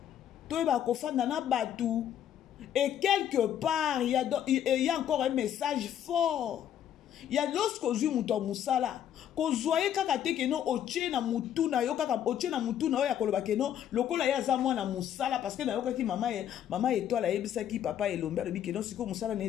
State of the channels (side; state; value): right; quieter; 10.2 dB